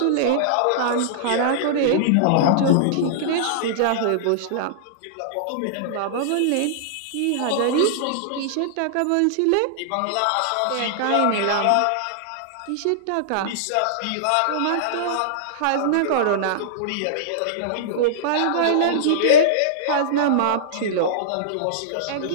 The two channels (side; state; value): both; different; correlation -0.02